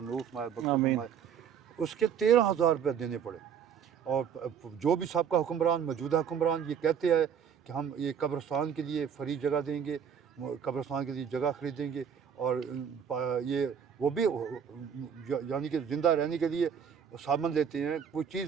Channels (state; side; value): quieter; left; 7.7 dB